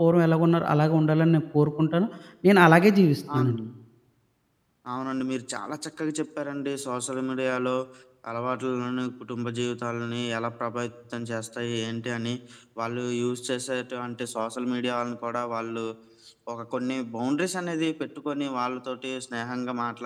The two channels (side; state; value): both; identical; correlation 1.00